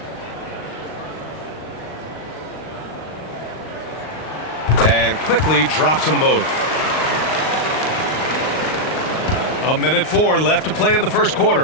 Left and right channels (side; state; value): right; late; 38 ms